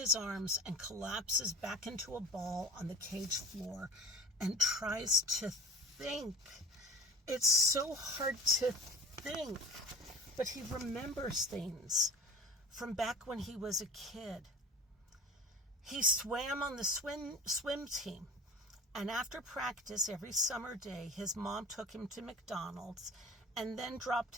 arms and collapses back into a ball on the cage floor and tries to think. It's so hard to think, but he remembers things from back when he was a kid. He swam on the swim team, and after practice every summer day, his mom took him to McDonald's and then dropped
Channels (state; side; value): normal; both; correlation 0.39